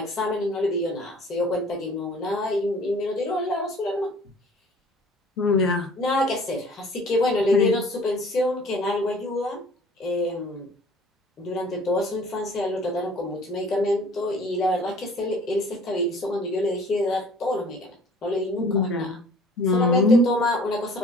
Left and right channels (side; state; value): both; normal; correlation 0.51